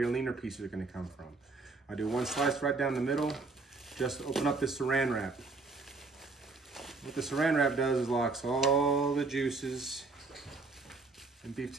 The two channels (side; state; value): left; quieter; 3.8 dB